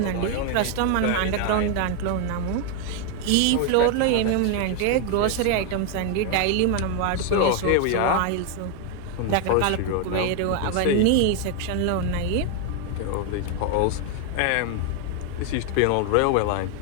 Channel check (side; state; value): both; different; correlation 0.01